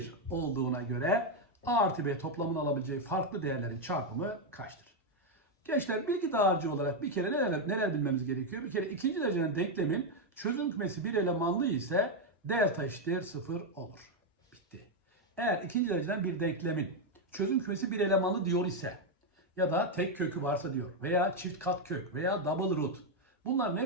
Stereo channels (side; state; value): both; normal; correlation 0.03